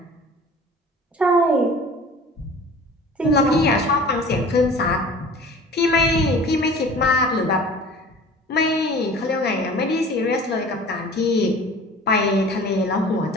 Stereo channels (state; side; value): normal; both; correlation 0.44